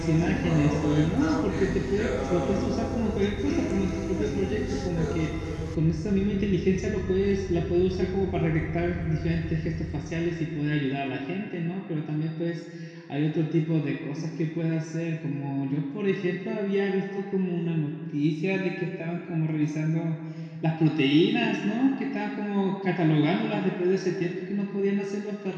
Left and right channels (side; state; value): both; identical; correlation 1.00